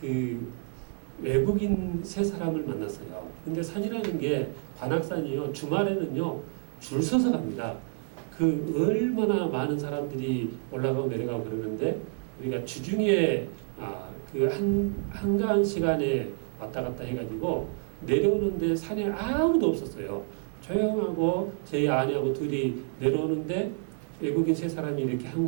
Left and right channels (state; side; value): silent; left; 55 dB below the other